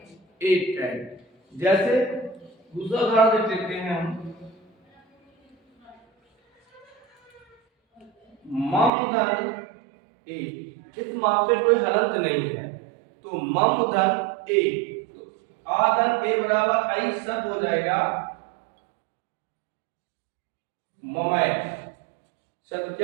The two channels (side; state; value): left; drops out; at 8.9 s